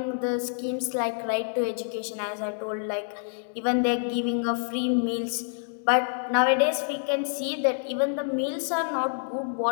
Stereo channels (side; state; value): right; silent; digital silence